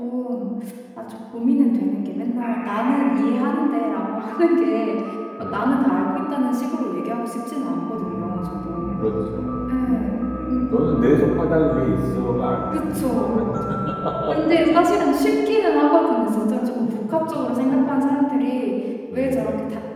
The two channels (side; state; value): both; identical; correlation 1.00